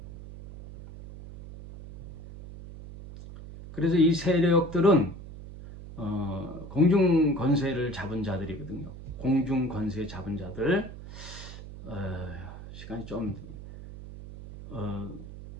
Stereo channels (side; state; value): right; noise; hum, 13 dB below the sound